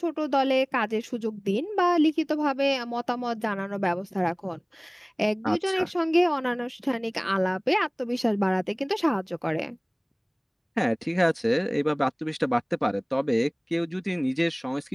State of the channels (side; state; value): both; identical; correlation 1.00